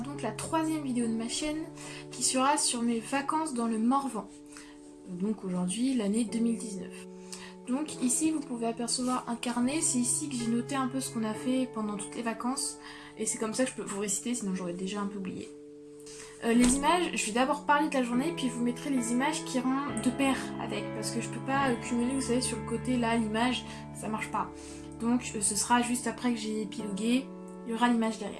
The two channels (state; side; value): identical; both; correlation 1.00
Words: la troisième vidéo de ma chaîne, qui sera sur mes vacances dans le Morvan. Donc aujourd'hui l'année 2019. Donc ici vous pouvez apercevoir un carnet, c'est ici que j'ai noté un peu ce qu'on a fait pendant toutes les vacances. Et c'est comme ça que je peux vous réciter, sinon j'aurais déjà un peu oublié. Les images, je vais d'abord parler de la journée, puis vous mettrez les images qui iront de pair avec, parce que je peux pas cumuler, vous savez, sur le côté là, l'image, ça marche pas. Donc ce sera juste après que j'ai épilogué, il y aura l'image